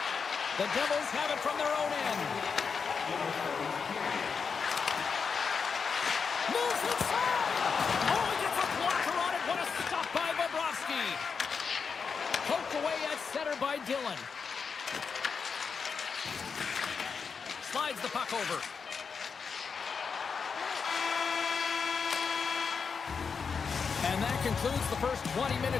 The Devils have it from their own end. Moves inside. Oh, he gets a blocker on it. What a stop by Bobrovsky. Poked away at center by Dillon. Slides the puck over. And that concludes the first 20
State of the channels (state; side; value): quieter; right; 5.7 dB